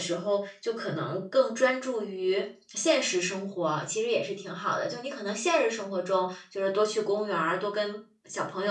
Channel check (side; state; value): both; identical; correlation 1.00